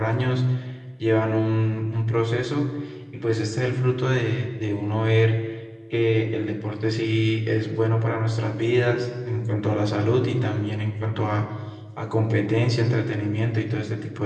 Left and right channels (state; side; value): identical; both; correlation 1.00